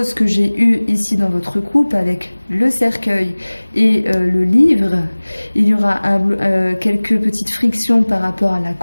que j'ai eue ici dans votre couple avec le cercueil et le livre. Il y aura quelques petites frictions par rapport à la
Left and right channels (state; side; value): inverted; both; correlation -1.00